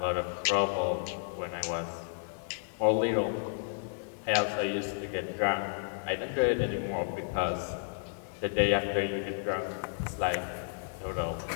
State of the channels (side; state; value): right; silent; 56 dB below the other